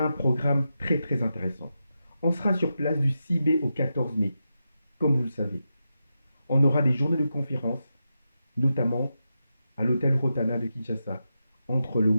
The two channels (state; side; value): inverted; both; correlation -0.88